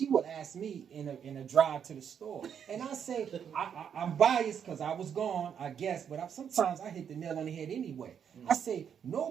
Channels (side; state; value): left; quieter; 8.0 dB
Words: would ask me in a drive to the store, and I say I'm biased because I was gone, I guess, but sometimes I hit the nail on the head anyway. I say